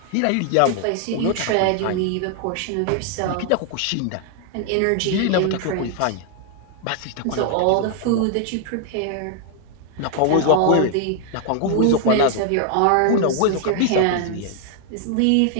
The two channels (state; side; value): different; both; correlation 0.00